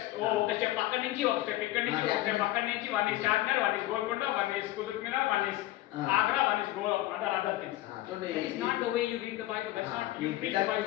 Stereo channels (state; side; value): quieter; right; 16.2 dB